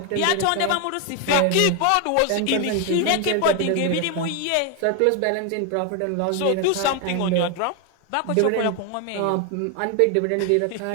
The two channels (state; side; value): different; both; correlation 0.01